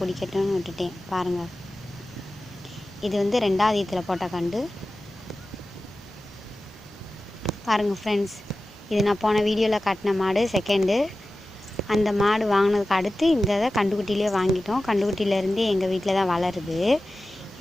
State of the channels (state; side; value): normal; both; correlation 0.95